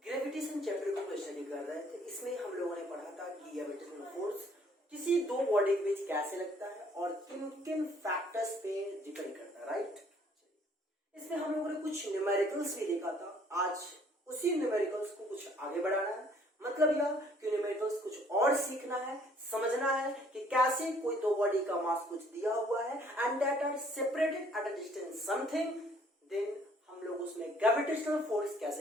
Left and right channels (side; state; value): both; normal; correlation 0.60